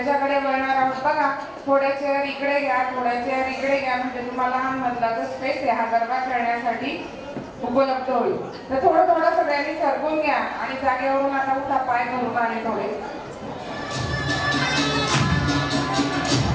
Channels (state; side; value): identical; both; correlation 1.00